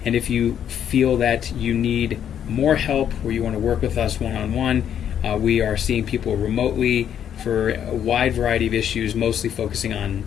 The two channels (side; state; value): right; quieter; 9.3 dB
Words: And if you feel that you need more help or you want to work with us one-on-one, we are seeing people remotely for a wide variety of issues, mostly focusing on